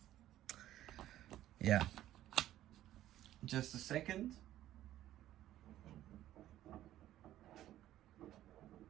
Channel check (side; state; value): left; quieter; 13.3 dB